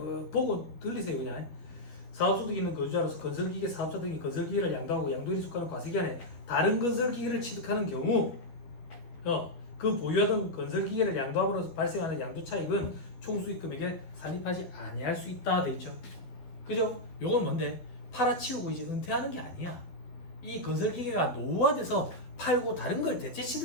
보고 들리세요. 그냥 사업소득 있는 거주자로서 건설기계 사업자 등이 건설기계를 양도하고 양도일에 속하는 과세기간에 다른 건설기계를 취득하는 경우 그 보유하던 건설기계를 양도함으로써 발생하는 양도차익은 총수익금액에 산입하지 아니할 수 있다 돼 있죠. 그죠? 요건 뭔데? 팔아치우고 이제 은퇴하는 게 아니야. 이 건설기계가 노후화돼서 팔고 다른 걸 대체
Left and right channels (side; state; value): right; late; 12 ms